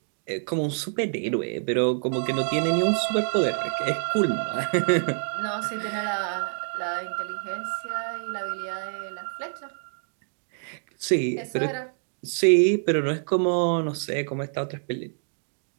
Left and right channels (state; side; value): silent; left; digital silence